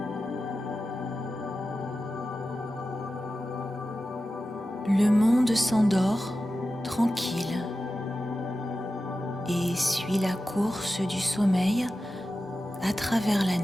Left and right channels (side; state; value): both; normal; correlation 0.93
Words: Le monde s'endort tranquille et suit la course du sommeil à travers la